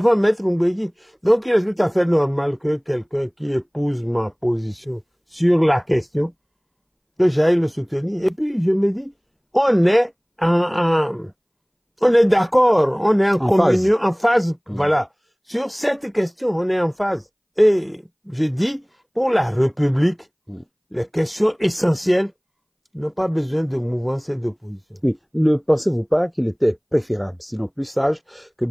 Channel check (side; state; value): both; identical; correlation 1.00